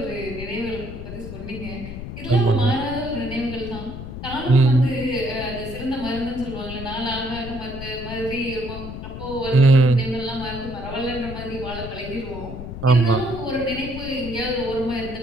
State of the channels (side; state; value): left; noise; rumble, 9 dB below the sound